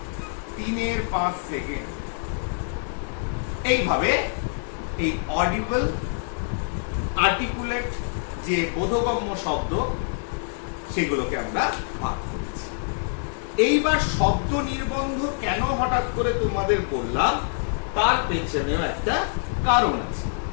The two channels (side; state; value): right; silent; 61 dB below the other